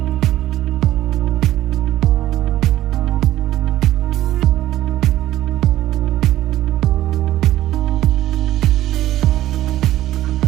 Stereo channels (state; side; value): quieter; left; 14.1 dB